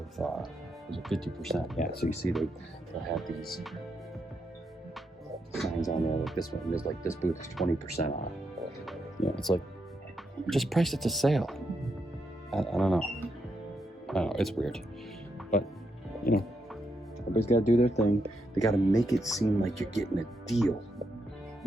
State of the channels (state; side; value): normal; both; correlation 0.81